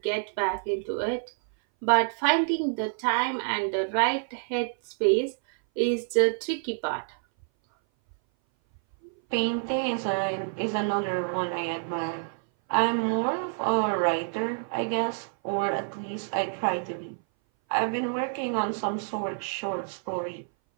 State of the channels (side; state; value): left; silent; 58 dB below the other